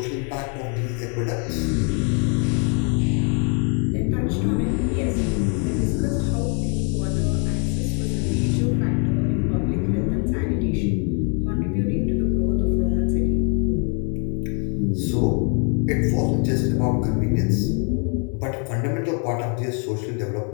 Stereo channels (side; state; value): right; quieter; 39.4 dB